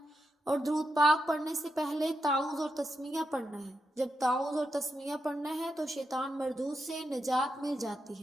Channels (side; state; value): both; normal; correlation 0.85